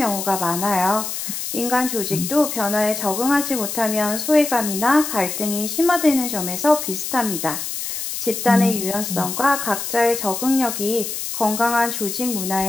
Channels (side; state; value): left; noise; hiss, 5 dB below the sound